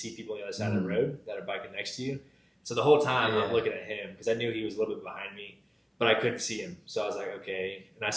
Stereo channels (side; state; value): both; identical; correlation 1.00